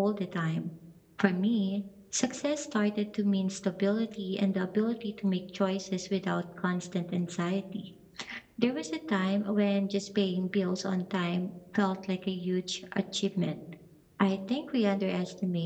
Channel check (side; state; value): both; identical; correlation 1.00